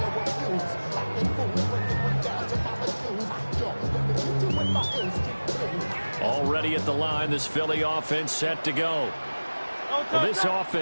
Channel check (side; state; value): both; inverted; correlation -1.00